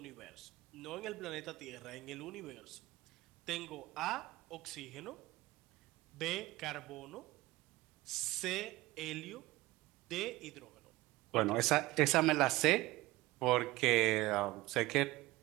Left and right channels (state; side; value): quieter; left; 19.3 dB